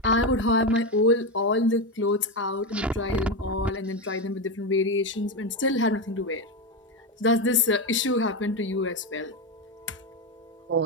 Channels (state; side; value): normal; both; correlation 0.12